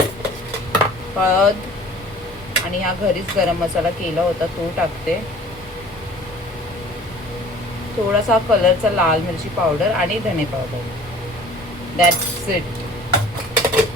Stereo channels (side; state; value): left; noise; rumble, 22 dB below the sound